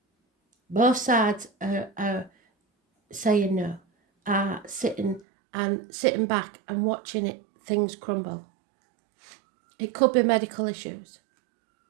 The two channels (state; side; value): drops out; left; at 5.2 s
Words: Both sides are saying no, are sitting back and watching things crumble. It could be medical issues.